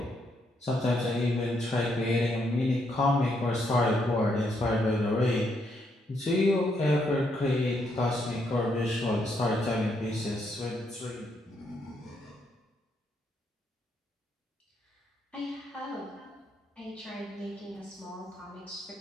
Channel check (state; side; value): normal; both; correlation 0.76